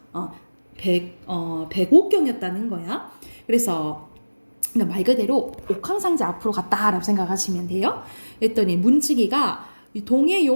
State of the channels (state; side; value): inverted; both; correlation -1.00